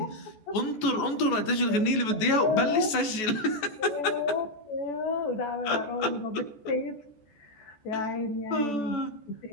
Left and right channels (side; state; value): right; late; 14 ms